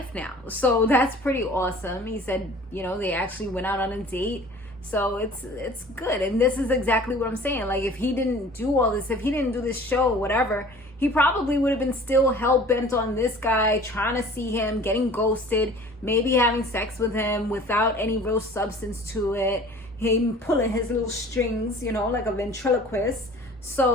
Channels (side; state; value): both; normal; correlation 0.46